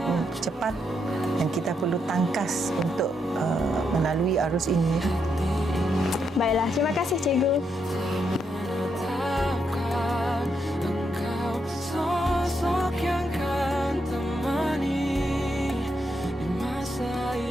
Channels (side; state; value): both; normal; correlation 0.80